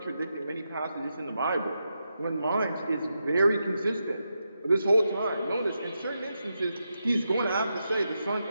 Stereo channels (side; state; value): both; inverted; correlation -0.86